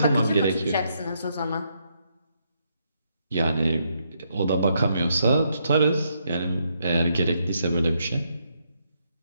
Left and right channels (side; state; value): both; inverted; correlation -0.76